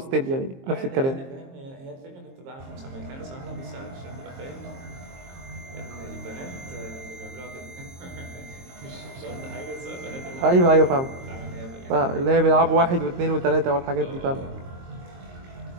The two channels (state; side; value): late; left; 22 ms